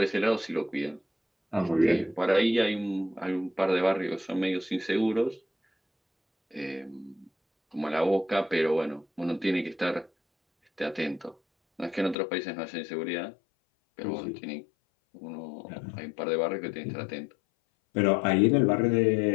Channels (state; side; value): drops out; right; at 12.2 s